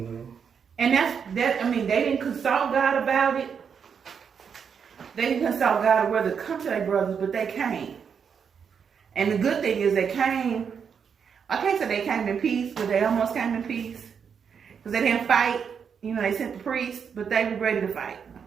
that's I mean, they didn't consult God about it. They didn't consult God whether to come to their brothers, but they came. And the good thing is they came. I can't say they came in peace, but they almost came in peace because they didn't fight. They sent the priests, but they were ready to fight.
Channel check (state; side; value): quieter; left; 6.8 dB